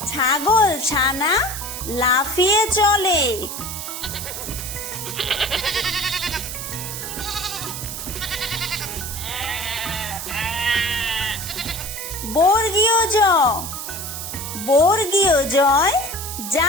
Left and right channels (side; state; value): right; noise; hiss, 7 dB below the sound